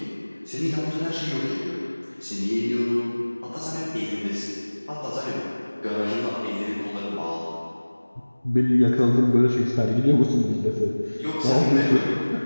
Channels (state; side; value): inverted; both; correlation -1.00